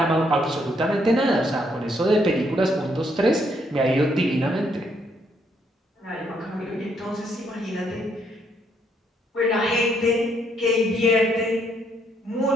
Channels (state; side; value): normal; both; correlation 0.72